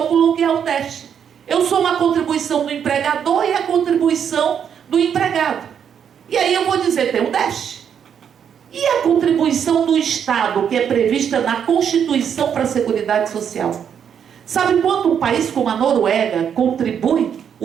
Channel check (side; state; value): left; quieter; 8.1 dB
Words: que é o déficit. Eu sou uma contribuição do empregador e a contribuição do empregado. E aí eu vou dizer, tem um déficit. E a contribuição do Estado, que é prevista na Constituição para a Seguridade Social? Sabe quanto um país como a Noruega contribui